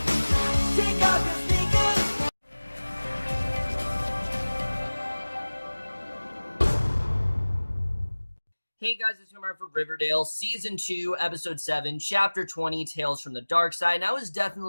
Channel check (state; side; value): inverted; both; correlation -1.00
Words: Take off your sneakers. Hey guys, it's Reinhart for Riverdale, Season 2, Episode 7, Chapter 20, Tales from the Darkside. And I was definitely